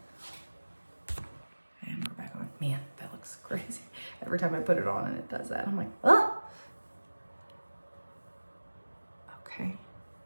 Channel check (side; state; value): both; inverted; correlation -1.00